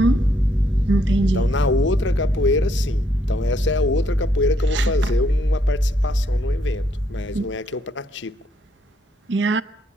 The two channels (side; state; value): both; normal; correlation 0.73